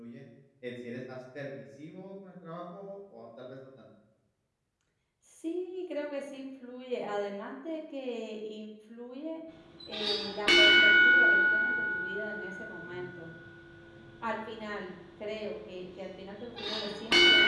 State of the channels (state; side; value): identical; both; correlation 1.00